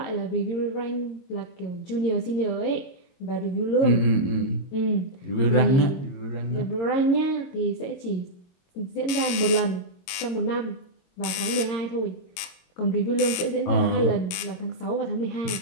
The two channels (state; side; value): late; right; 23 ms